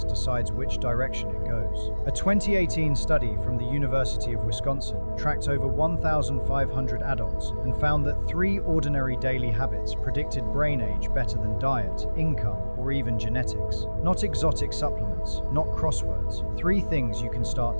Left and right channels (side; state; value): both; inverted; correlation -1.00